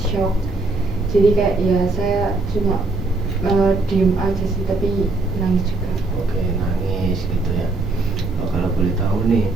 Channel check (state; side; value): quieter; left; 3.3 dB